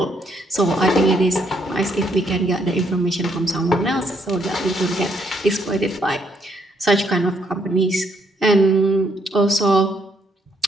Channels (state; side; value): normal; both; correlation 0.71